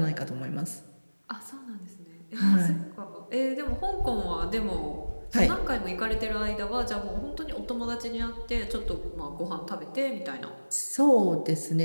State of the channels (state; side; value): inverted; both; correlation -1.00